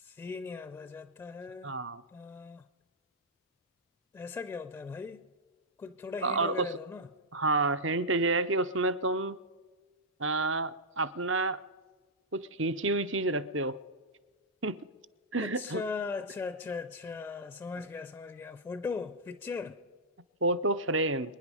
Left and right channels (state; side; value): normal; both; correlation -0.08